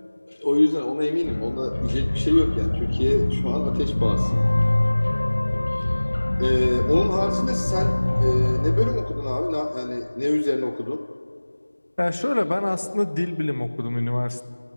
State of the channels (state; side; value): inverted; both; correlation -1.00